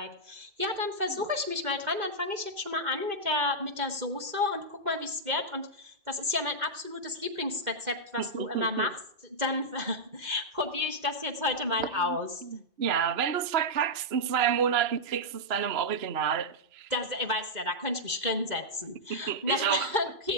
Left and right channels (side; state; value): left; late; 2.1 ms